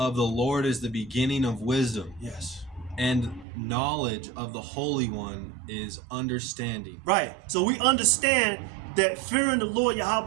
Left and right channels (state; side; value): drops out; left; at 3.5 s